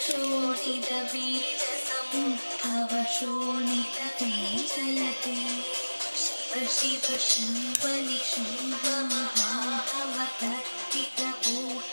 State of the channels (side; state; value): both; inverted; correlation -1.00